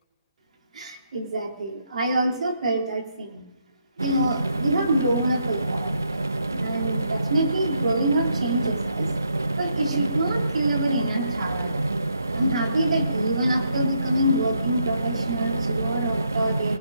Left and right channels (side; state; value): both; inverted; correlation -0.76